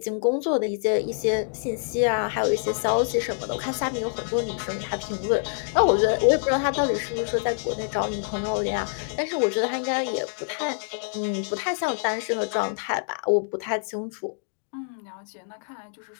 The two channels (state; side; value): silent; right; digital silence